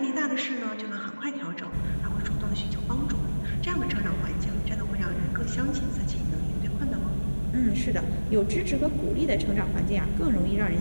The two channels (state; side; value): inverted; both; correlation -1.00